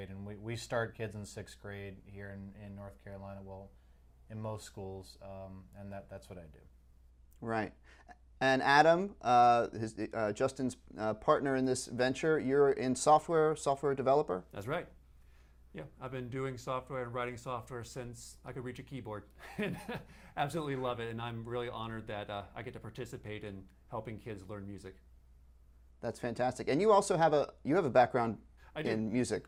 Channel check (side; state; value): both; identical; correlation 1.00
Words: And we start kids in 6th grade here in North Carolina, well, in most schools, and that's what I do. Right. And Adam, Justin's partner in this venture, you're in software developer? That's right. Yeah, I've been doing software and writing software since I could reach a keyboard. And absolutely love it, and I'm really honored that I get to participate in helping kids learn music. That's fantastic. And you also have a background in music.